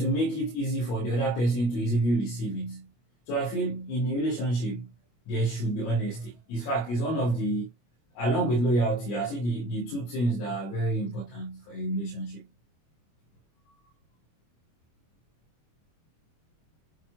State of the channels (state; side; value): late; right; 25 ms